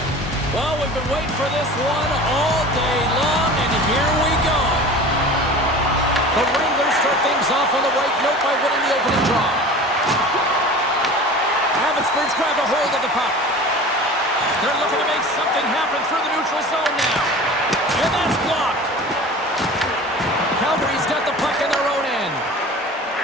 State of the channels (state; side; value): normal; both; correlation 0.38